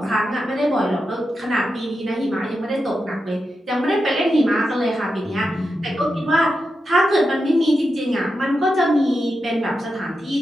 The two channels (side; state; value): both; normal; correlation 0.88